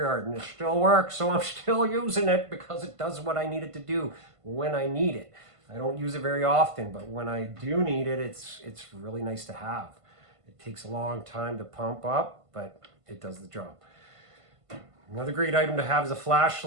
and it still works. So I'm still using it because it does what I need it to do when I need it. I don't use it very often, but when I do need it, it's really nice to have. It takes a long time to pump up, but it does the job. Another great item to have is a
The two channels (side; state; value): left; late; 1.5 ms